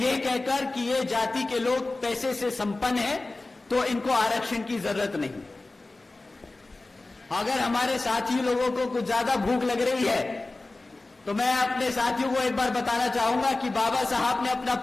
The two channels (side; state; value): right; quieter; 3.1 dB